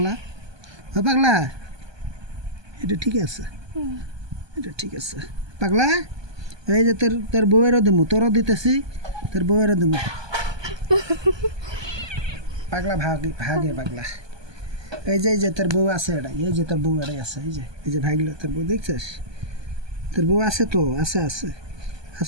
পাগলা, এটা ঠিক আছে, এটা ঠিক আছে পাগলা। এই যে তোর বউয়েরও দিমু, তোরও দিতেছি, তোর বউয়েরও দিমু। পাগলা ভাগে পাগলা। এই যে তোর বউ আছে, এটা এই যে তোর বউ এটাই আছে, এই যে ভাগলো তোর বউ, দেখছিস? তোর বউ আছে তো,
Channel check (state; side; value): late; left; 1.2 ms